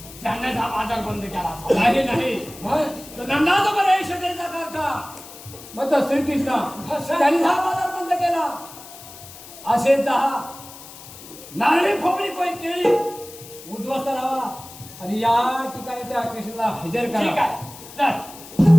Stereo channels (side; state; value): left; noise; hiss, 17 dB below the sound